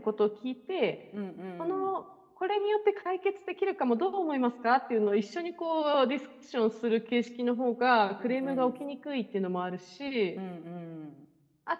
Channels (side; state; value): both; identical; correlation 1.00